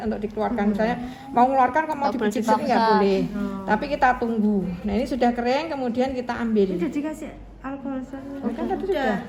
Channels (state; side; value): identical; both; correlation 1.00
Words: untuk dikeluarkan. Misalnya mau mengeluarkan kok mau dipijit sini nggak boleh. Tapi kita tunggu. Nah ini sudah kering, kemudian kita ambil. Udah dikasih alkohol Kan tadi sudah.